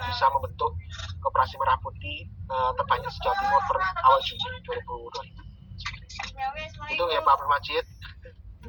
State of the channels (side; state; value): both; identical; correlation 1.00